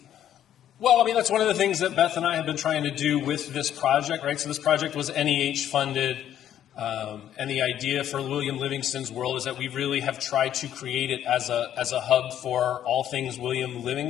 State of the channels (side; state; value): right; quieter; 10.8 dB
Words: Well, I mean, that's one of the things that Beth and I have been trying to do with this project, right? So this project was NEH funded. And the idea for William Livingston's World is that we really have tried to create it as a hub for all things William